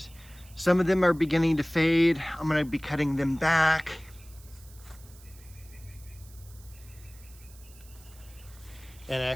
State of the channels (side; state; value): right; noise; hiss, 23 dB below the sound